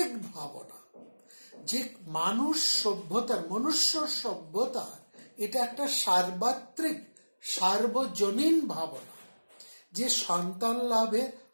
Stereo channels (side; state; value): both; inverted; correlation -1.00